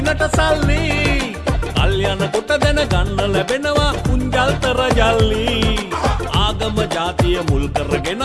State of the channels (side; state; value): both; identical; correlation 1.00